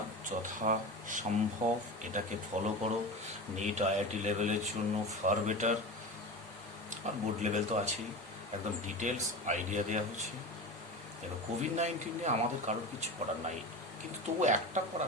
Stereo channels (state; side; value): normal; both; correlation 0.27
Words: যথাসম্ভব এটাকে ফলো করো। নিট আইআইটি লেভেলের জন্য ফার বেটার, আর বোর্ড লেভেল তো আছেই। একদম ডিটেলস আইডিয়া দেওয়া হচ্ছে। দেখো কোভিড-19 নিয়ে আমাদের কারোর কিছু করার নাই, কিন্তু তবু একটা